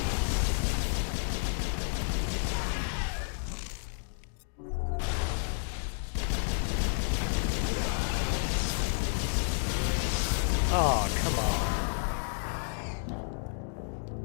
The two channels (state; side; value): silent; right; digital silence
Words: Oh, come on.